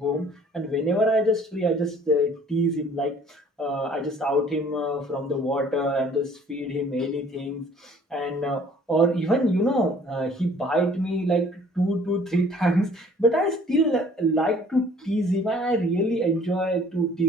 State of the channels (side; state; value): both; normal; correlation 0.55